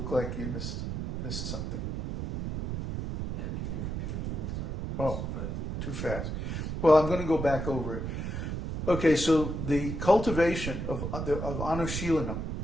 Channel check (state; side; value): noise; right; rumble, 4 dB below the sound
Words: like you missed something. Yeah, can you repeat it one more time? Oh, too fast. Well, I'm going to go back over it. Okay, so the cultivation of Anuśilanam